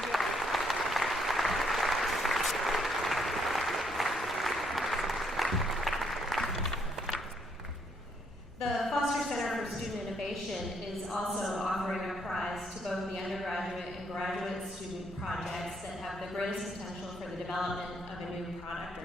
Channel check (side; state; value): both; normal; correlation 0.71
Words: it. The Foster Center for Student Innovation is also offering a prize to both the undergraduate and graduate student projects that have the greatest potential for the development of a new product